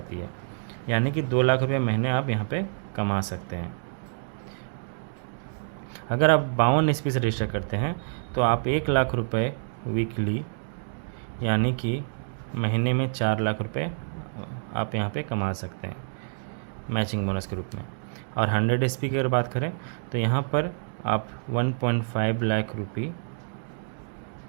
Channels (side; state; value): left; silent; digital silence